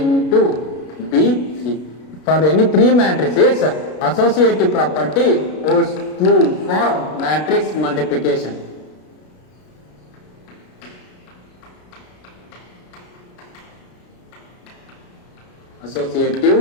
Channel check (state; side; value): late; right; 33 ms